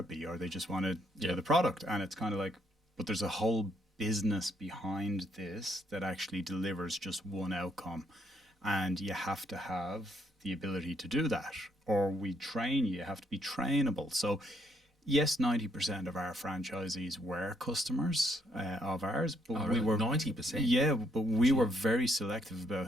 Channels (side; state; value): both; normal; correlation 0.72